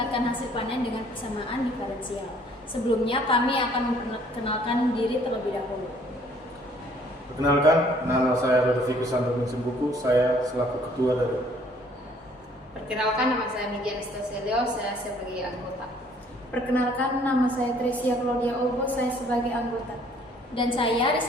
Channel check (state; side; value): normal; both; correlation 0.60